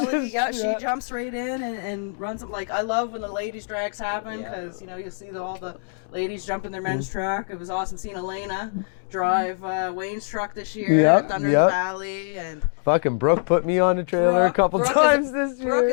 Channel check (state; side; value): silent; right; 62 dB below the other